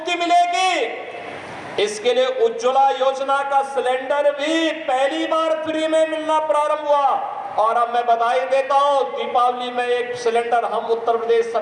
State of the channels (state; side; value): identical; both; correlation 1.00